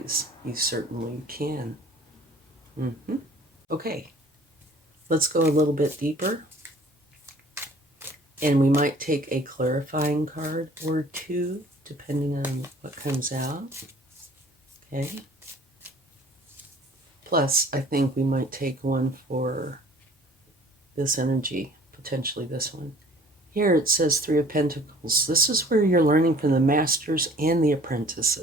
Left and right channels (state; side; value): normal; both; correlation 0.52